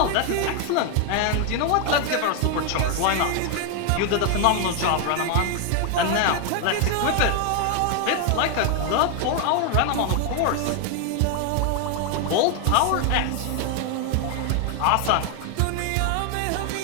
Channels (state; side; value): different; both; correlation 0.00